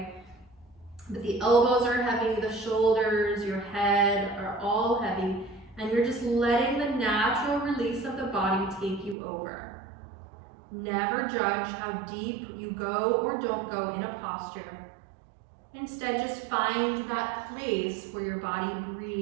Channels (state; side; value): drops out; left; at 9.2 s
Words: but the elbows are heavy, the shoulders, your head are all heavy, and you're just letting the natural release of the body take you over. Never judge how deep you go or don't go in a posture. Instead, just find that place where your body